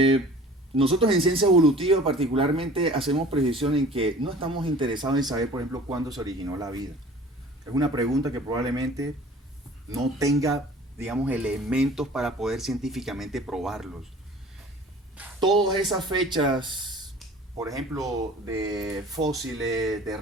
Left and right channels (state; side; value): normal; both; correlation 0.46